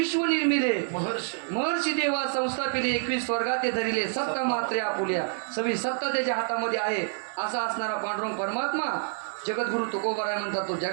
निर्मिले महर्षी देवा संस्थापिले, 21 स्वर्गाते धरिले, सत्ता मात्रे आपुल्या. सगळी सत्ता त्याच्या हातामध्ये आहे. असा असणारा पांडुरंग परमात्मा जगद्गुरु तुकोबाराय म्हणतात, तो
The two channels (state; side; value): silent; left; digital silence